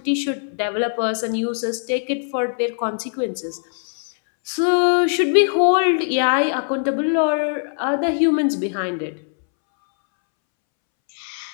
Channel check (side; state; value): right; silent; 65 dB below the other